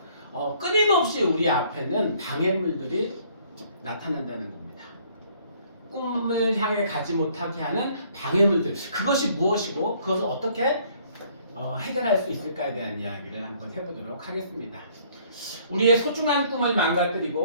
끊임없이 우리 앞에는 방해물들이 나타난다는 겁니다. 꿈을 향해 가지 못하게 하는 방해물들, 그것이 무엇이고 그것을 어떻게 해결할 수 있을까에 대한 이야기를 한번 해보도록 하겠습니다. 우리의 소중한 꿈을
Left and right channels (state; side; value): inverted; both; correlation -0.61